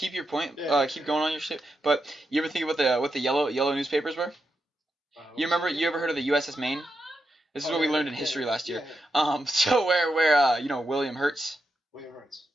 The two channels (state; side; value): normal; both; correlation 0.86